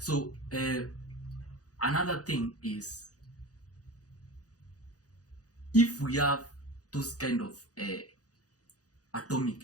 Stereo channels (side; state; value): right; late; 0.67 ms